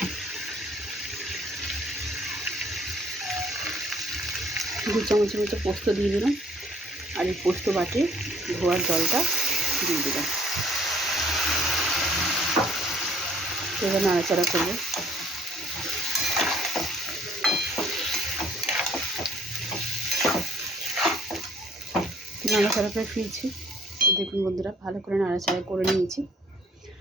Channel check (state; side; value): normal; both; correlation 0.59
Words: দু চামচের মতো পোস্ত দিয়ে দিলাম, আর এই পোস্ত বাটি ধোয়ার জলটা দিয়ে দিলাম। এবার নাড়াচাড়া করবো। নাড়াচাড়া করে ফিরছি। তো দেখুন বন্ধুরা ভালো করে নাড়াচাড়া করে নিয়েছি,